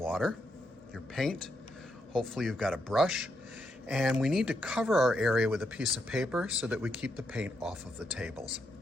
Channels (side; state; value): both; normal; correlation 0.80